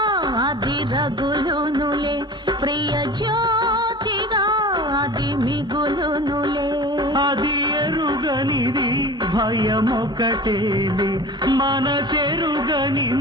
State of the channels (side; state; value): both; normal; correlation 0.37